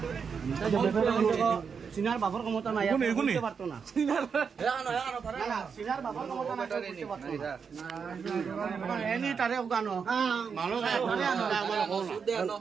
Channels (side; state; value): left; quieter; 6.1 dB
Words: সিনার বাবার ক্ষমতা নাই এগুনি, এগুনি। বুঝতে পারতো না সিনার বাবার ক্ষমতা নাই বুঝতে পারতো না এনি তারে গানো মানুষ আনো